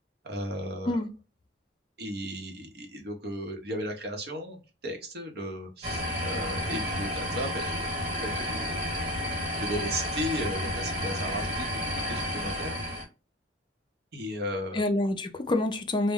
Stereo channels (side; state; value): both; normal; correlation 0.35